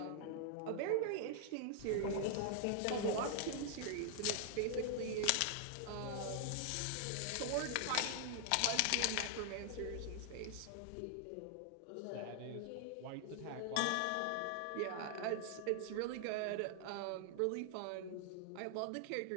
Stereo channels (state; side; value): different; both; correlation 0.00